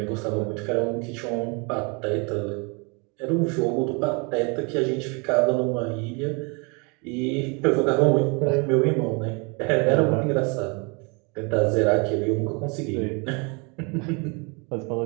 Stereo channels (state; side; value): quieter; left; 31.6 dB